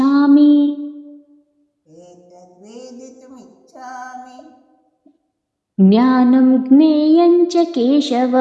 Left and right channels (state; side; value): identical; both; correlation 1.00